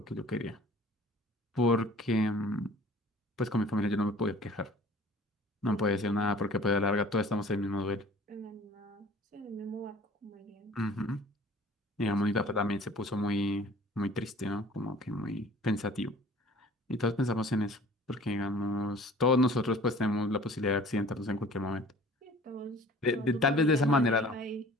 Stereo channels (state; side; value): normal; both; correlation 0.48